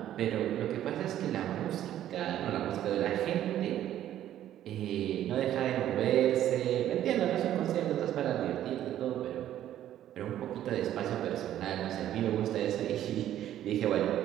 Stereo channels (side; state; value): left; quieter; 12.0 dB